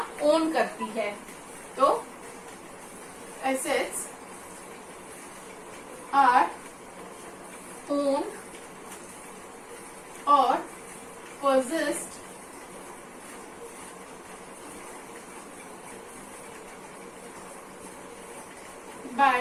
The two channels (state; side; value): identical; both; correlation 1.00